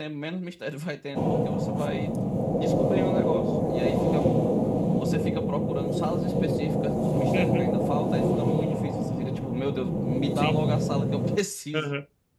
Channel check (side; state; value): both; identical; correlation 1.00